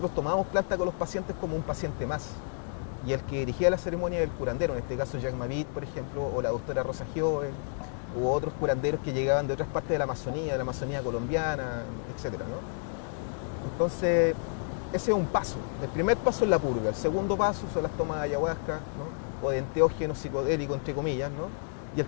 tomamos planta con los pacientes como un paciente más. Y el que dirigía la ceremonia era el curandero, en este caso Jacques Mavit, por ejemplo, o la doctora Rosa Giove, u otros curanderos que llegaban de otras partes de la Amazonía colombiana, etc., ¿no? Entonces, ese es un paso. El primer paso es la purga, el segundo paso son las tomas de ayahuasca, ¿no? O de enteógenos psicodélicos, entre comillas, ¿no? Y el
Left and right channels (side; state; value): right; silent; digital silence